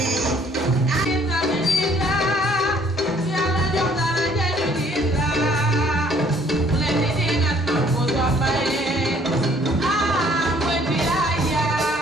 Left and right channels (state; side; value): normal; both; correlation 0.60